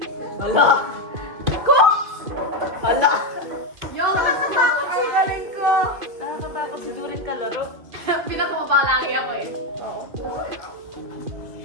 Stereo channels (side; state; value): left; late; 2.5 ms